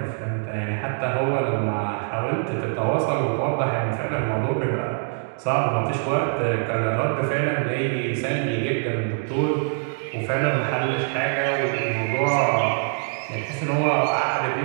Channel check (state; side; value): silent; left; 63 dB below the other